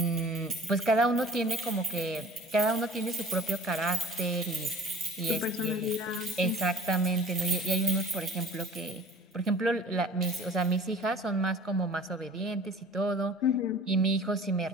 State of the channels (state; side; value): normal; both; correlation 0.47